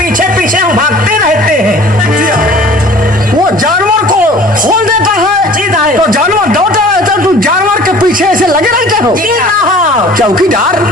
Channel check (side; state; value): both; normal; correlation 0.48